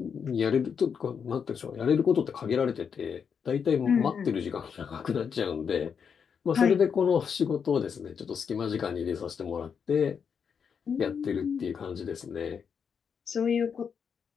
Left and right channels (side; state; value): right; quieter; 6.8 dB